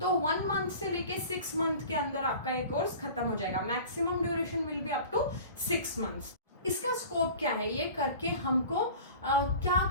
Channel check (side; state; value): both; inverted; correlation -0.40